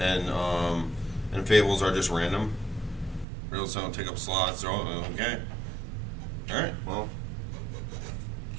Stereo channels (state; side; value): drops out; left; at 3.2 s